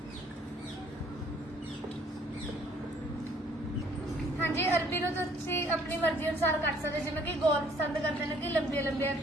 ਹਾਂਜੀ, ਅਰਬੀ ਨੂੰ ਤੁਸੀਂ ਆਪਣੀ ਮਰਜ਼ੀ ਅਨੁਸਾਰ ਕੱਟ ਸਕਦੇ, ਜਿਵੇਂ ਕਿ ਗੋਲ ਪਸੰਦ ਕਰਦੇ ਨੇ ਕਿ ਲੰਬੀਆਂ ਲੰਬੀਆਂ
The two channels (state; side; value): normal; both; correlation 0.60